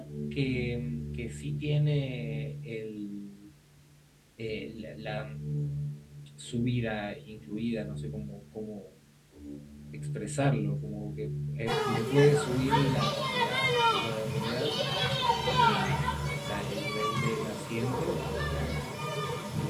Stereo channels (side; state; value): both; identical; correlation 1.00